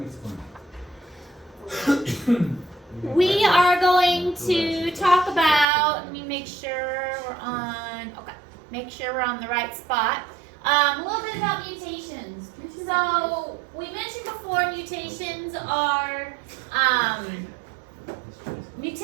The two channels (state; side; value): drops out; left; at 5.7 s